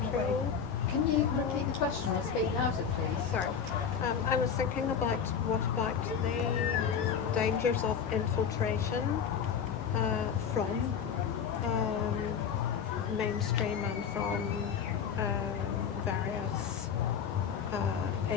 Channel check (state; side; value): quieter; right; 7.2 dB